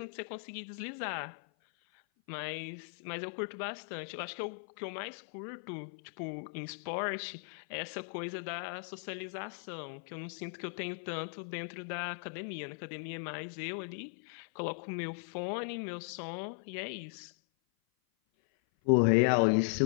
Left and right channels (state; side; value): silent; right; 53 dB below the other